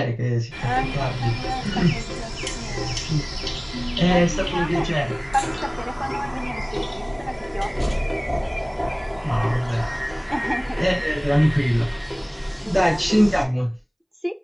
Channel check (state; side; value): identical; both; correlation 1.00